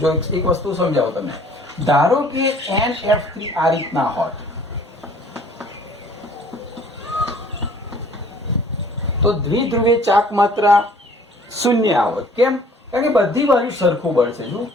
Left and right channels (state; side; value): normal; both; correlation 0.54